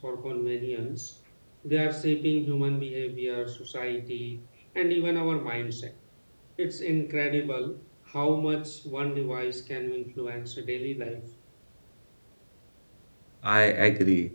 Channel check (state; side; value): inverted; both; correlation -1.00